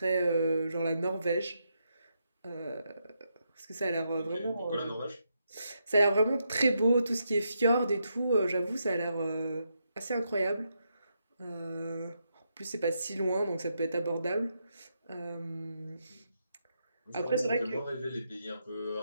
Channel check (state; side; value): inverted; both; correlation -0.81